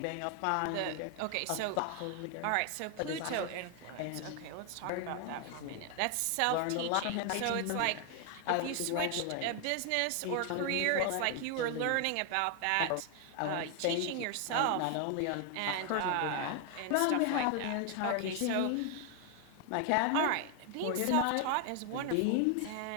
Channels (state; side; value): different; both; correlation 0.00